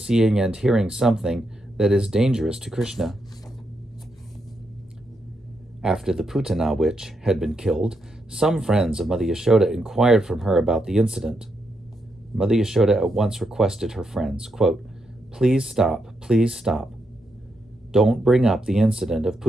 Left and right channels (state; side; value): normal; both; correlation 0.82